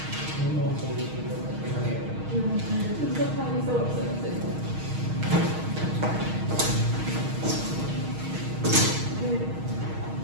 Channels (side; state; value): left; late; 6.4 ms